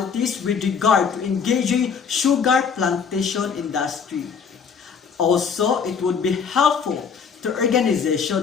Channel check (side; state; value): right; quieter; 6.3 dB